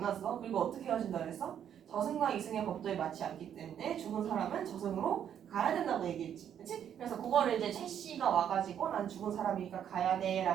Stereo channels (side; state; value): left; quieter; 9.3 dB